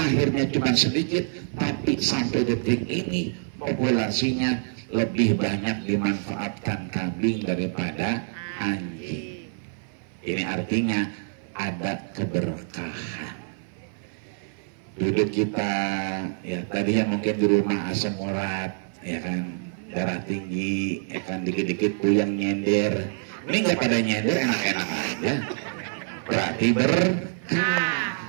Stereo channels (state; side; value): silent; left; 57 dB below the other